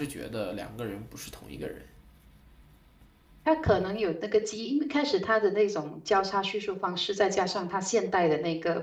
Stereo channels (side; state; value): both; identical; correlation 1.00